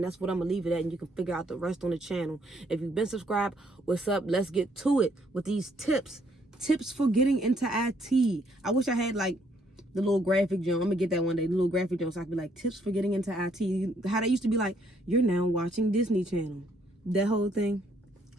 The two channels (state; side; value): normal; both; correlation 0.68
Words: that's what I'm gonna leave it at. And you can figure out the rest on the channel. If you've been subscribed, what's up? Let's get to it with these tips. Tips for getting into IT. I wish I had like the little graphic jump. I'm gonna get that one day. The little graphic jump, so I can be like tips for getting into IT. How they used to be like, you're now watching Disney Channel. That whole thing.